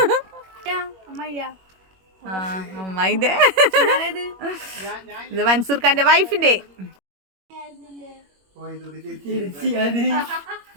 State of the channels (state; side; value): late; left; 21 ms